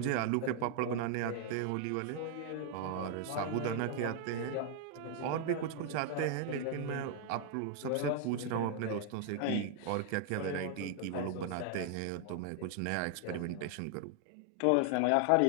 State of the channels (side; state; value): both; different; correlation 0.00